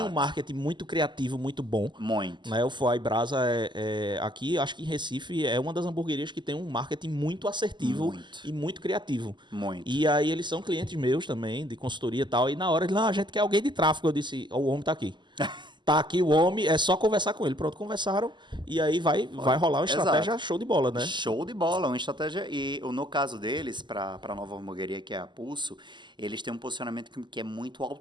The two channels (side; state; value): left; late; 0.22 ms